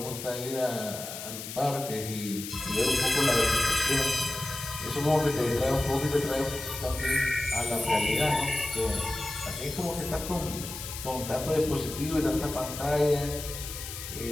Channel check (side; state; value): left; noise; hiss, 9 dB below the sound